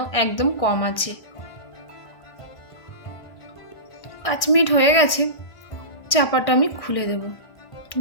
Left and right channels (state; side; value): late; right; 1.6 ms